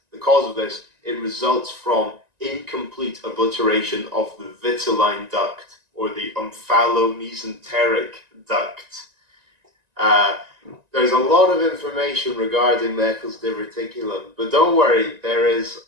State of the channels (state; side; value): late; left; 1.9 ms